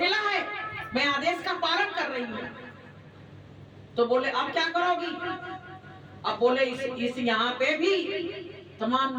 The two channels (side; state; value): both; identical; correlation 1.00